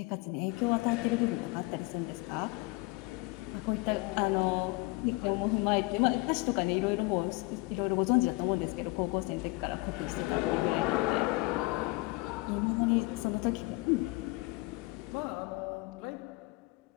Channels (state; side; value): quieter; right; 23.7 dB